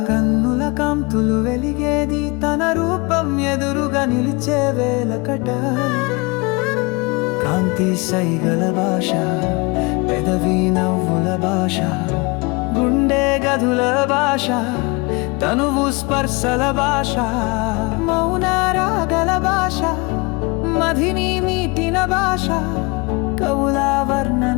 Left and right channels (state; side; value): quieter; right; 27.2 dB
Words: కన్నుల కాంతులు వెలిగేది తన రూపం ఎదురుగా నిలిచే వేలకట. కాంతి సైగల భాష, పెదవి నవ్వుల భాష, గుండె గదుల భాష, తనువు స్పర్శల భాష, మౌన రాగల భాష, మదిని మీటిన భాష, కవుల